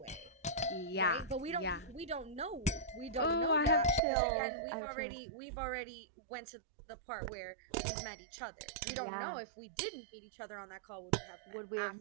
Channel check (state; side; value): drops out; left; at 4.0 s